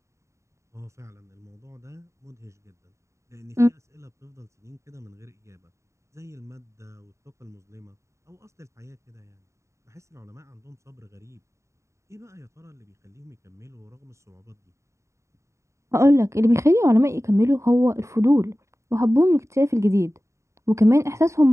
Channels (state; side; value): late; left; 0.14 ms